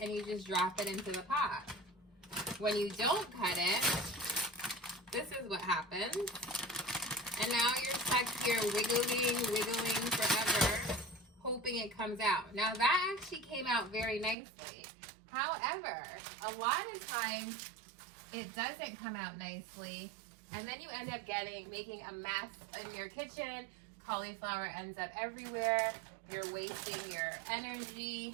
and you just drop it into the pot. When you don't cut it, this is what happens. And now you're stuck here wiggling forever, hoping it comes out. Now that actually came out very nicely. However, a lot of times it doesn't come out nicely. And then you end up making a mess in your kitchen. Cauliflower ends up everywhere. You're wasting your energy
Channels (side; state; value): left; drops out; at 14.4 s